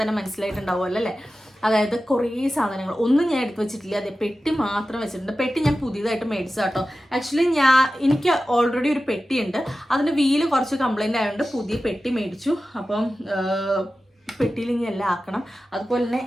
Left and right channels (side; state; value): both; normal; correlation 0.94